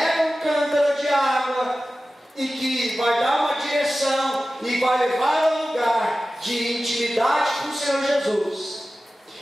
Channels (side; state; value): both; normal; correlation 0.95